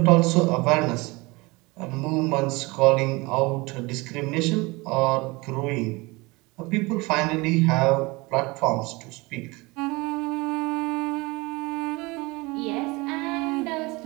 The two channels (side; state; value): left; quieter; 24.3 dB